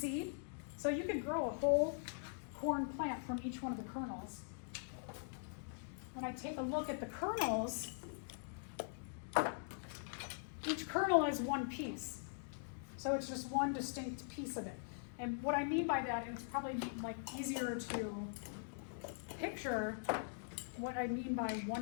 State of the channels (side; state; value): right; silent; digital silence